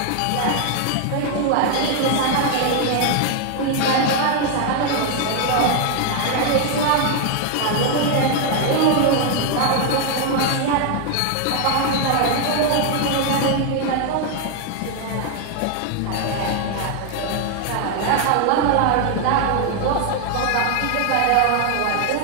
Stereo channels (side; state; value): both; different; correlation 0.00